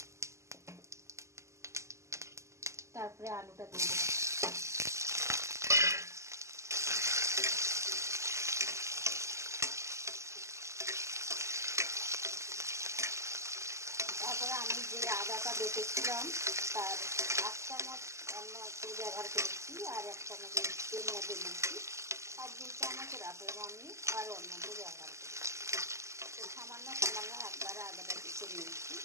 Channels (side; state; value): left; late; 0.14 ms